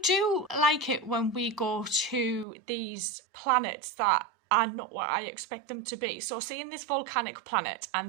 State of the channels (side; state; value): left; drops out; at 2.5 s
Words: do like it when we go to these planets that are not what I expect them to be. So seeing this volcanic planet